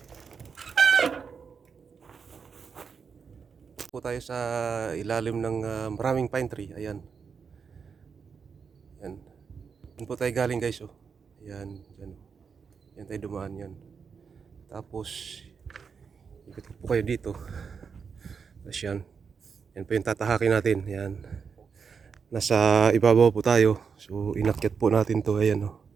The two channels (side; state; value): left; quieter; 6.0 dB